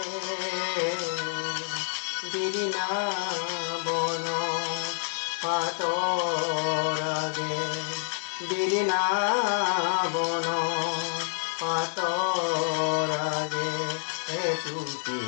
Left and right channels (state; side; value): silent; right; 59 dB below the other